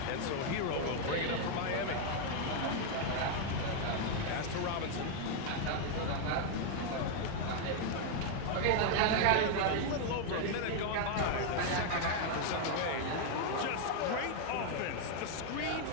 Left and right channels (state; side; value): different; both; correlation 0.00